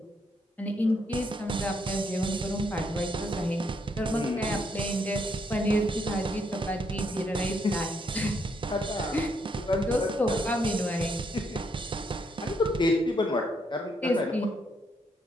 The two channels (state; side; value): normal; both; correlation 0.74